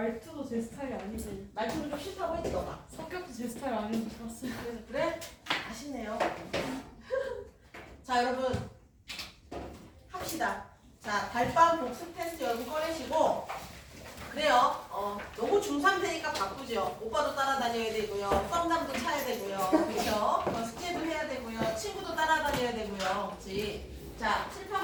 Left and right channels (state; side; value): identical; both; correlation 1.00